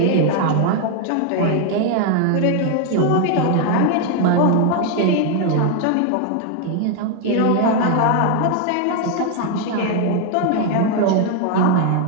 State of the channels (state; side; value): different; both; correlation 0.00